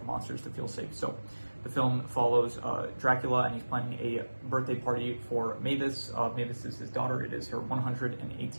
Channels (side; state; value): both; inverted; correlation -1.00